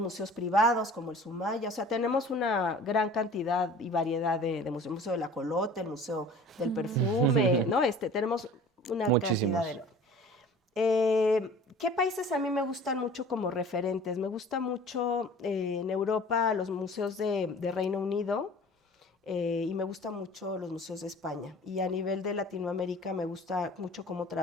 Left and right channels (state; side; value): normal; both; correlation 0.45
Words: privados como el Sumaya, o sea, tenemos una gran cantidad y variedad de museos, el Museo del Ajolote, el Museo del Perfume, ¿no? Tenemos una cantidad enorme. ¿Qué países a mí me gustan mucho como referentes? Me gusta mucho en Europa los museos de Reino Unido y me gustan mucho los museos de España. Y a nivel de Latinoamérica me gusta mucho cómo